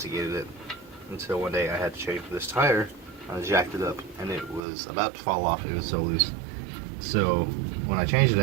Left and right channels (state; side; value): drops out; left; at 4.6 s